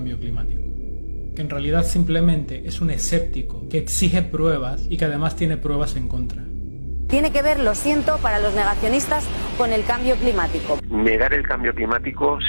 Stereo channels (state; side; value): inverted; both; correlation -1.00